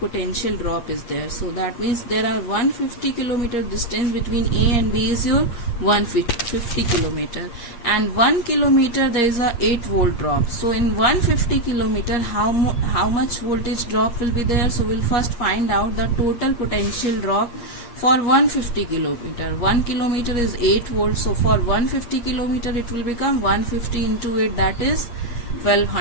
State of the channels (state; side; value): late; right; 8.5 ms